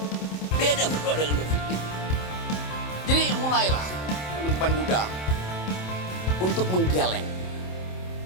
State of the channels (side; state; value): right; late; 27 ms